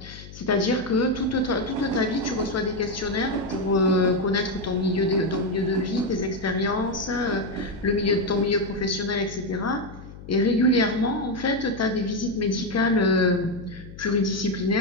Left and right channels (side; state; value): left; noise; hum, 16 dB below the sound